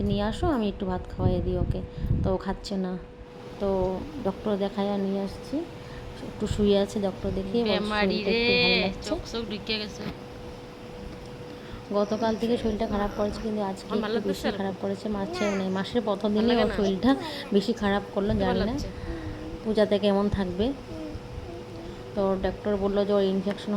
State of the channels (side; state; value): both; identical; correlation 1.00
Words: নিয়ে আসো, আমি একটু ভাত খাওয়াই দিই ওকে। তো ও খাচ্ছে না, তো ডক্টর দেখায় নিয়ে আসছি। একটু শুয়ে আছে, ডক্টর দেখিয়ে শরীরটা একটু ভালো লাগছে। গতকাল থেকে শরীরটা খারাপ করেছে, কিন্তু আজকে একটু বেশি খারাপ করেছে। মাসের প্রথম দিনে ওর শরীরটা বেশি খারাপ করলো, জানি না পূজাতে কেমন থাকবে। তো ডক্টর বললো যে ওর ইনফেকশন